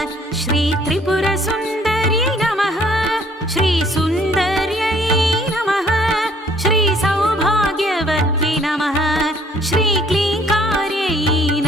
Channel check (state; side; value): normal; both; correlation 0.61